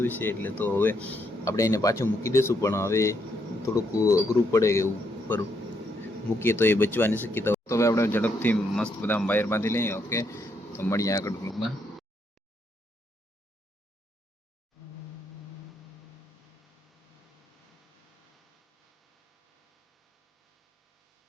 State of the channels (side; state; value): both; normal; correlation 0.76